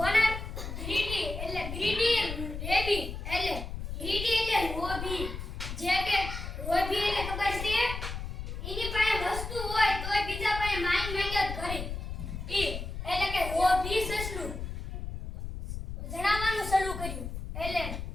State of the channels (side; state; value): left; noise; rumble, 6 dB below the sound